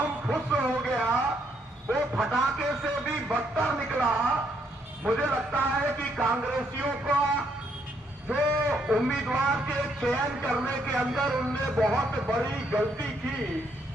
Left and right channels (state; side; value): normal; both; correlation 0.73